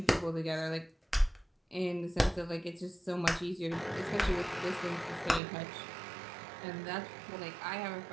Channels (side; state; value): left; drops out; at 5.4 s